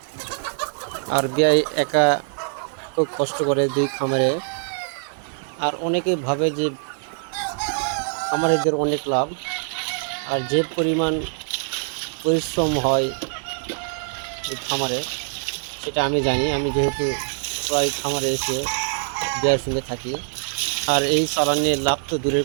আর বিয়ে একা খুব কষ্ট করে দুই খামারে। আর অনেকে ভাবে যে খামারিদের অনেক লাভ, আর যে পরিমাণ পরিশ্রম হয় এই খামারে সেটা আমি জানি। আমি যেহেতু প্রায় খামারে এসে বিয়ের সঙ্গে থাকি। আর এই চালান নিয়ে লাভ তো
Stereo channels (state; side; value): silent; left; digital silence